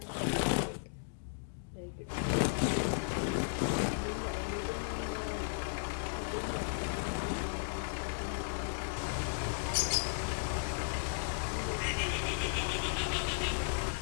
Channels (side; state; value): right; silent; digital silence